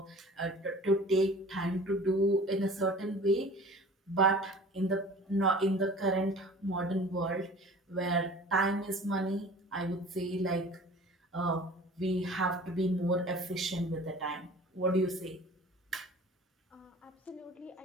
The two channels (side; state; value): both; normal; correlation 0.44